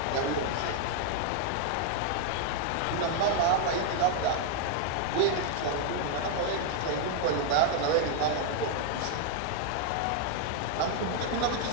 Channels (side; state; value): both; different; correlation 0.00